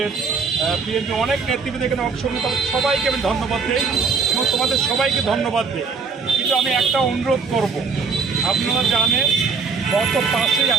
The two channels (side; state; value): left; quieter; 5.0 dB